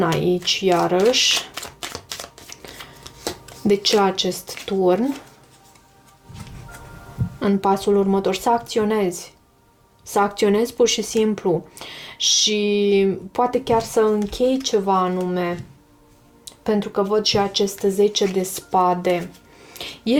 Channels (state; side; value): identical; both; correlation 1.00